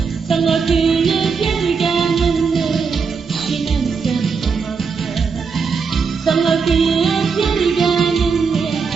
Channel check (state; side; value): quieter; left; 5.4 dB